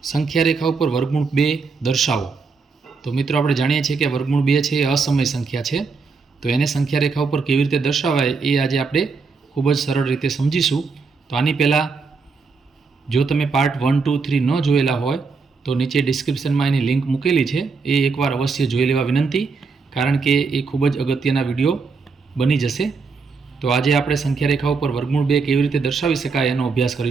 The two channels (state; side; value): quieter; left; 4.7 dB